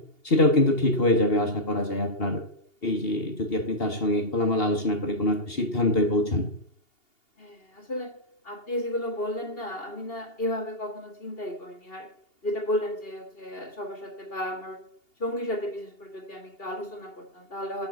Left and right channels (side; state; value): right; late; 2.8 ms